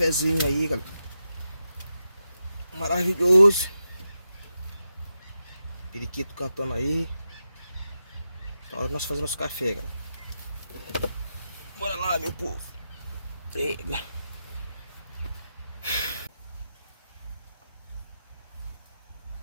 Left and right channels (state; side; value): inverted; both; correlation -0.88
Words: aí, galera. Maravilhoso. Periquito cantando aí. Tá hora de nós fazer nosso café, galera. Bora lá, meu povo. Eita.